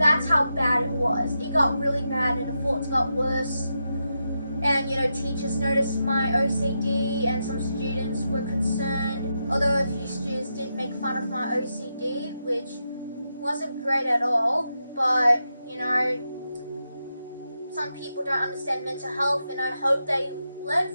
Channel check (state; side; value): inverted; both; correlation -0.86